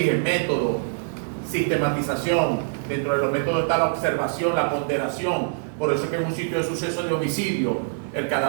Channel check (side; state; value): left; silent; 62 dB below the other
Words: método, sistematización. Dentro de los métodos está la observación, la ponderación. Por eso es que en un sitio de suceso de homicidio el